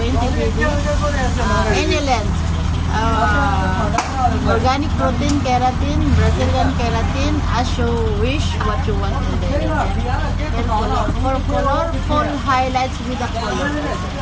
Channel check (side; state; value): both; identical; correlation 1.00